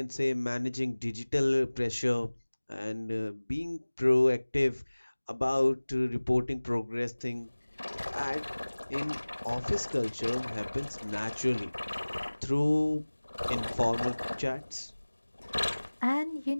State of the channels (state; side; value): inverted; both; correlation -1.00